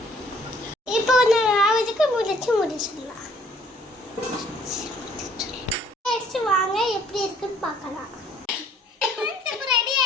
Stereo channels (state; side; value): normal; both; correlation 0.60